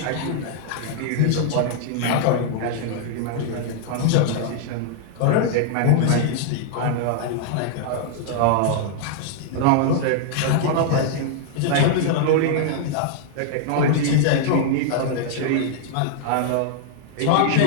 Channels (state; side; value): different; both; correlation -0.01